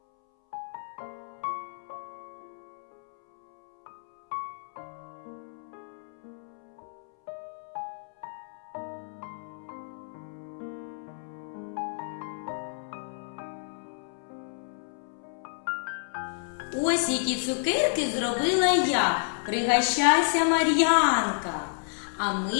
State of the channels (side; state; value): right; silent; 58 dB below the other